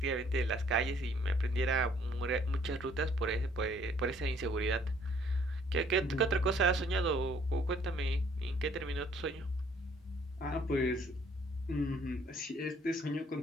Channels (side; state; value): both; normal; correlation 0.61